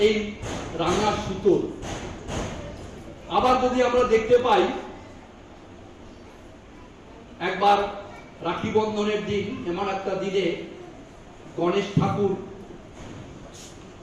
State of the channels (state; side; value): identical; both; correlation 1.00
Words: এই রাঙা সুতোর। আবার যদি আমরা দেখতে পাই, একবার রাখি বন্ধনের দিন এমন একটা দিনে গণেশ ঠাকুর